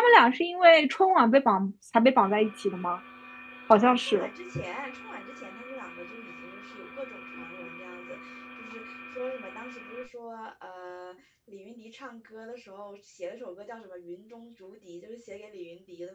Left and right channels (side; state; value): both; identical; correlation 1.00